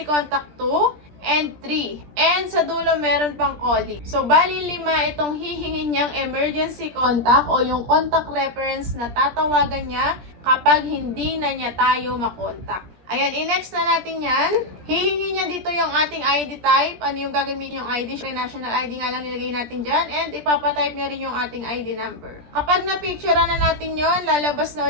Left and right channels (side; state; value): left; late; 17 ms